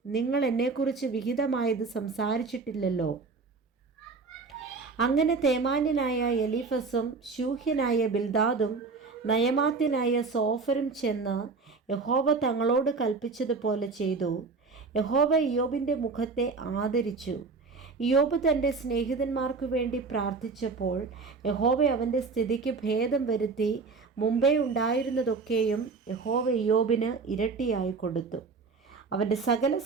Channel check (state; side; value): quieter; left; 4.4 dB